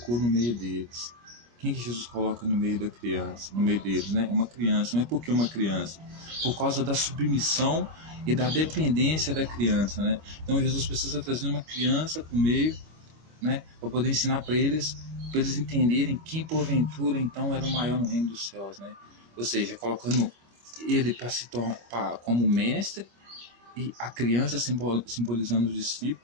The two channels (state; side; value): late; left; 25 ms